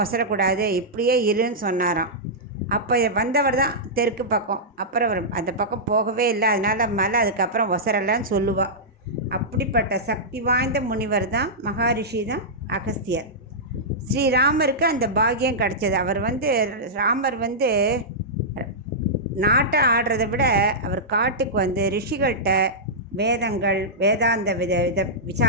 ஒசரக்கூடாது, இப்படியே இருன்னு சொன்னாராம். அப்போ வந்தவர் தான் தெற்கு பக்கம். அப்புறம் அவர் அந்த பக்கம் போகவே இல்லை. அதனால் மலை அதுக்கப்புறம் ஒசரலைன்னு சொல்லுவாள். அப்படிப்பட்ட சக்தி வாய்ந்த முனிவர் தான், மகாரிஷி தான் அகஸ்தியர். ஸ்ரீராமருக்கு அந்த பாக்கியம் கிடச்சது. ராமர் நாட்டை ஆடுறதை விட அவர் காட்டுக்கு வந்து ரிஷிகள்கிட்ட வேதங்கள், வேதாந்த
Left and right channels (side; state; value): both; normal; correlation -0.12